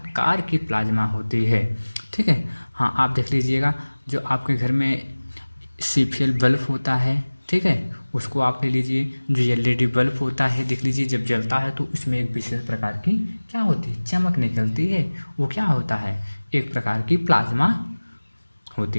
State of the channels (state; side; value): inverted; both; correlation -1.00